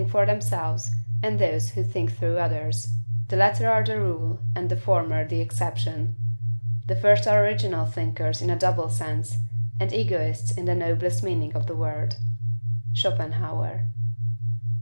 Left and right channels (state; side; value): inverted; both; correlation -1.00